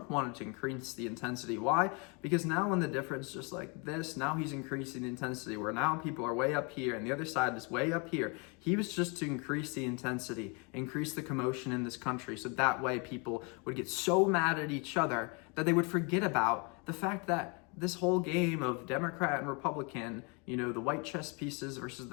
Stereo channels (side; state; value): right; quieter; 32.4 dB